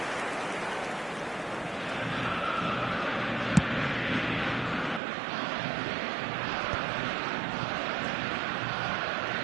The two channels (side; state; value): left; drops out; at 5.0 s